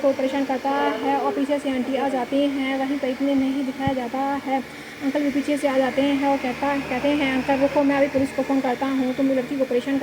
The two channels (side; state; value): both; identical; correlation 1.00